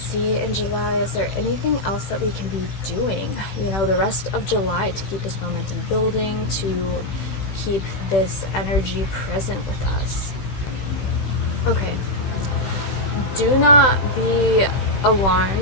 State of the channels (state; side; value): late; right; 16 ms